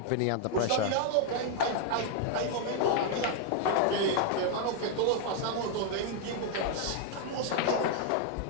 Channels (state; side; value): different; both; correlation 0.00